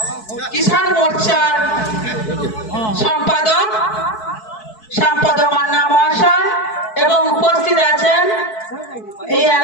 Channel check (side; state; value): right; late; 4.6 ms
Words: কিষাণ মোর্চার সম্পাদক শ্যামপদ মান্না মহাশয় এবং উপস্থিত আছেন এই